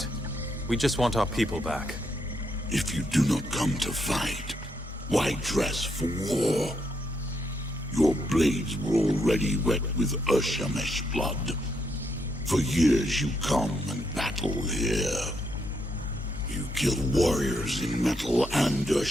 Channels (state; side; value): normal; both; correlation 0.78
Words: We just want our people back. If you do not come to fight, why dress for war? Your blades were already wet with Urshamesh blood. For years you come and battle here. You kill warriors in metal and